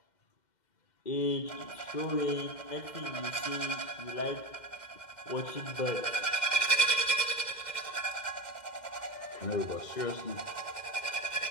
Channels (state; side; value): late; right; 2.1 ms